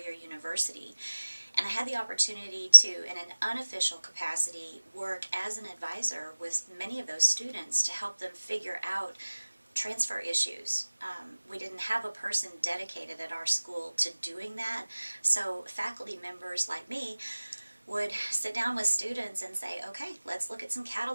university. And I had the opportunity to, in an unofficial capacity, work as an advisor with many of those students to help them figure out transfer issues. We didn't have a person dedicated at our school to doing that, so faculty members like me would sit down with students and say, okay, let's look at some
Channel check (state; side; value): inverted; both; correlation -1.00